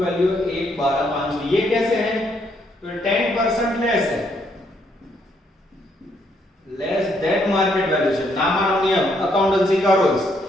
1,12,500। ये कैसे है, तो 10% लेस है, लेस देन मार्केट वैल्यूएशन। नामानो नियम, अकाउंटेंसी का रूल्स,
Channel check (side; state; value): both; normal; correlation 0.72